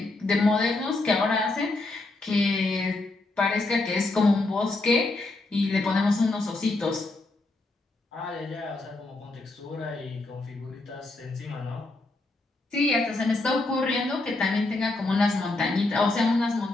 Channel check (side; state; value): right; quieter; 3.0 dB